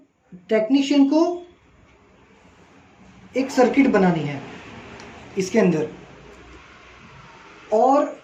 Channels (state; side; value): identical; both; correlation 1.00